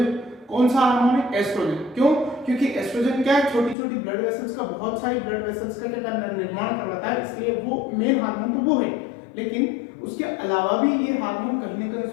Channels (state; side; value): drops out; right; at 3.8 s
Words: कौन सा हार्मोन है, एस्ट्रोजन। क्यों, क्योंकि एस्ट्रोजन क्या है, छोटी छोटी ब्लड वेसल्स का, बहुत सारी ब्लड वेसल्स का क्या निर्माण करवाता है, इसलिए वो मेन हार्मोन तो वो है। लेकिन उसके अलावा भी ये हार्मोन कहीं ना कहीं